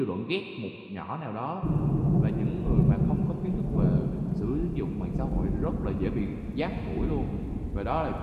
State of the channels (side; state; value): both; identical; correlation 1.00